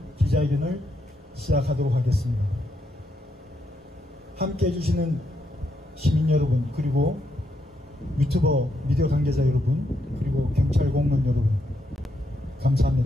기자회견을 시작하도록 하겠습니다. 함께 해주시는 시민 여러분, 그리고 유튜버 미디어 관계자 여러분, 그리고 경찰 공무원 여러분,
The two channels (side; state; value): both; normal; correlation 0.79